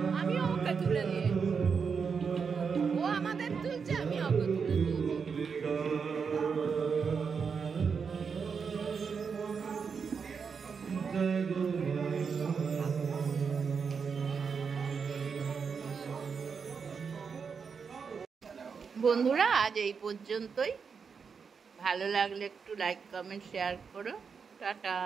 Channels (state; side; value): quieter; left; 5.9 dB